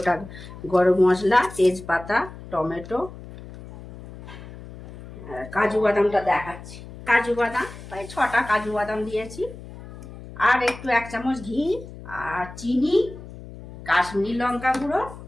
গরম মশলা, তেজপাতা, টমেটো, কাজু বাদামটা দেখাচ্ছি। কাজু বাদাম প্রায় 6টা কাজু বাদাম দিয়েছি। আর একটু 1 চামচ ঘি, আর চিনি, কাশ্মীরি লঙ্কা গুঁড়ো,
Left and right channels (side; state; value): left; noise; hum, 15 dB below the sound